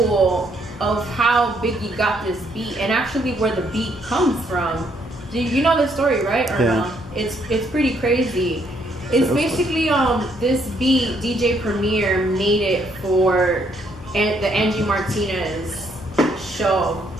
of how Biggie got this beat and actually where the beat comes from. Do you know the story, right? Or Yeah. no? It's pretty crazy. It's basically this beat DJ Premier made it for the Angie Martinez show,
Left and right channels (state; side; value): normal; both; correlation 0.70